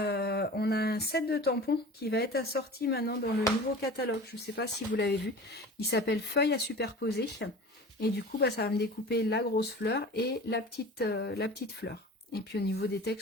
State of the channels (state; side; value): normal; both; correlation 0.38